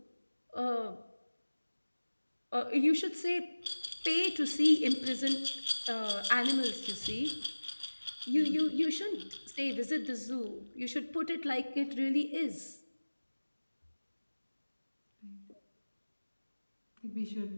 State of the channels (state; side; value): inverted; both; correlation -1.00